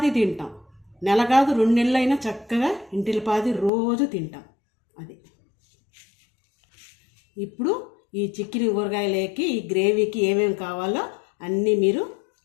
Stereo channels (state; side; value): drops out; right; at 3.7 s